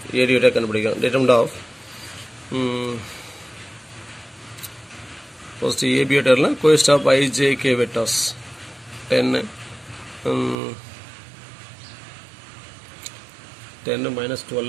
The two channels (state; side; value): drops out; left; at 10.6 s